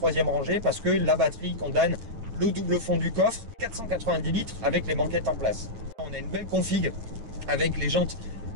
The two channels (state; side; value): late; left; 8.8 ms